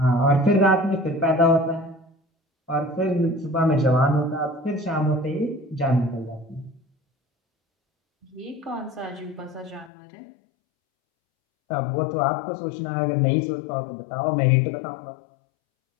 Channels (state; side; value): drops out; right; at 9.9 s